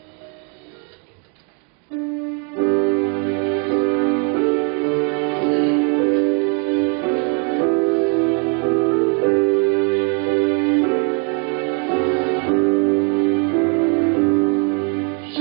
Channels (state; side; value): quieter; left; 36.1 dB